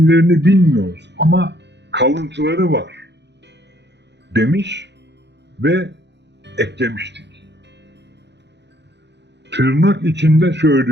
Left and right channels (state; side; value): late; left; 0.50 ms